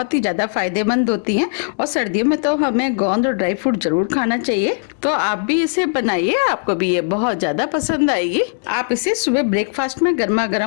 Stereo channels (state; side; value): silent; right; digital silence